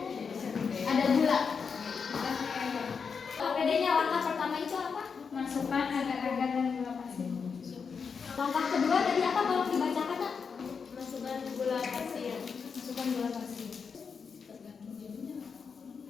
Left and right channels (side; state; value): right; quieter; 5.8 dB